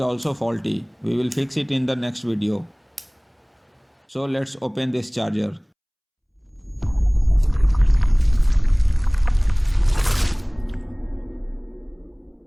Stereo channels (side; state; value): both; identical; correlation 1.00